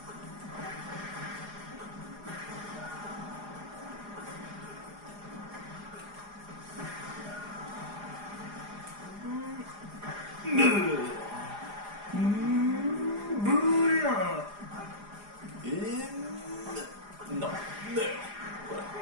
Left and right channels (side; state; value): left; late; 4.9 ms